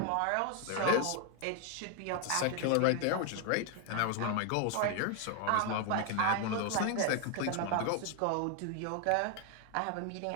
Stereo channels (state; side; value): different; both; correlation 0.01